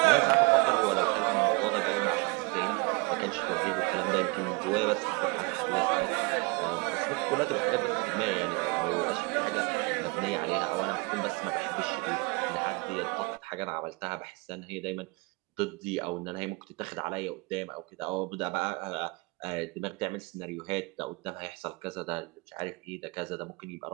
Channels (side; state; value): left; quieter; 28.2 dB